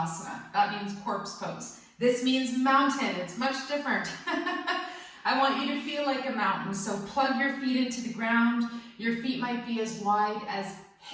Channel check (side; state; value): both; identical; correlation 1.00